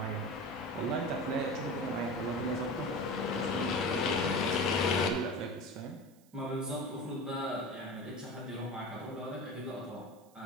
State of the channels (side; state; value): right; noise; hiss, 29 dB below the sound